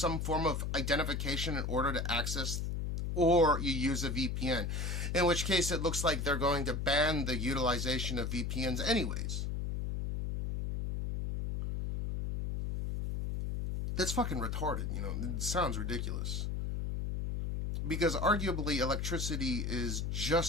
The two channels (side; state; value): left; noise; hum, 2 dB below the sound